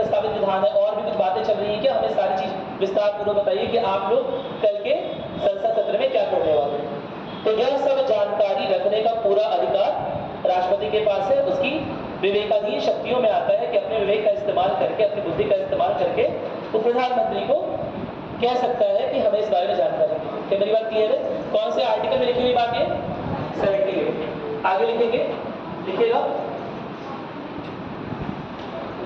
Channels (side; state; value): both; identical; correlation 1.00